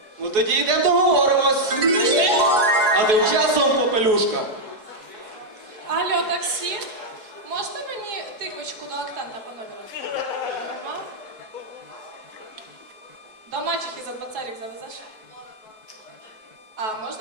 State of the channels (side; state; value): left; late; 4.7 ms